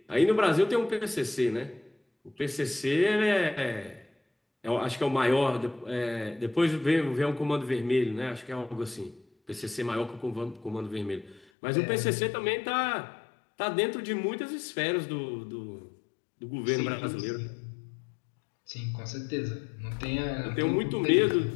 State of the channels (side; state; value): right; drops out; at 11.4 s